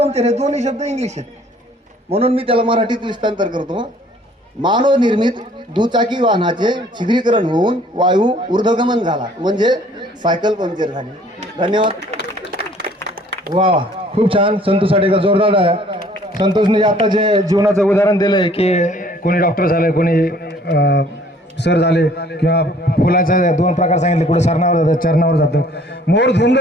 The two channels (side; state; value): both; normal; correlation 0.56